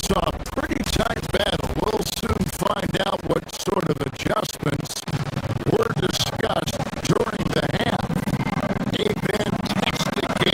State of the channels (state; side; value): identical; both; correlation 1.00